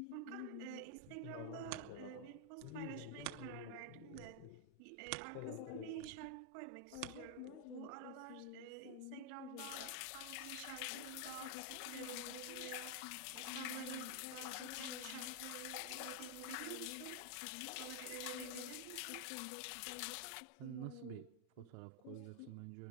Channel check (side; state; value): both; different; correlation 0.00